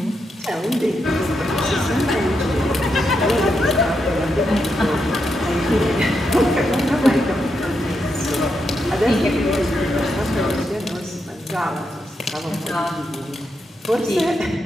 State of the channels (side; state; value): both; normal; correlation 0.83